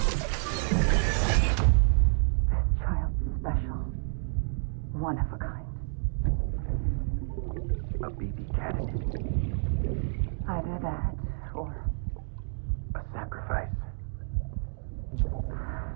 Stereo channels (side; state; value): left; silent; digital silence